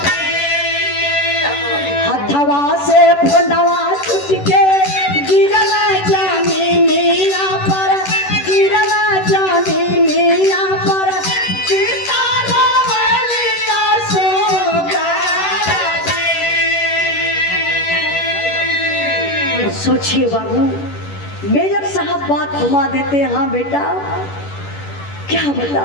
हथवा से फोनवा छूट के गिरल जमीनिया पर गिरल जमीनिया पर गीता रोवलिया सोचिए बाबू मेजर साहब बात घुमा देते हैं हाँ बेटा क्या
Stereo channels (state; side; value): late; right; 11 ms